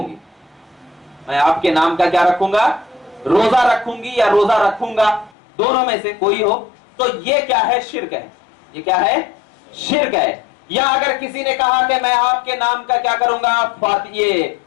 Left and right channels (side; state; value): right; drops out; at 5.3 s